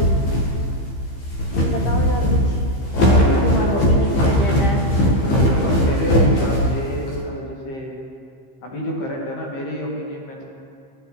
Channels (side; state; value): right; late; 15 ms